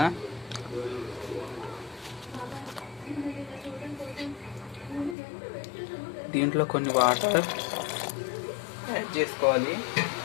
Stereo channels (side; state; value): right; drops out; at 5.2 s